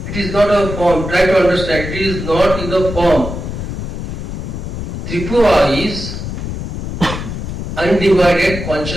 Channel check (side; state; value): left; noise; rumble, 6 dB below the sound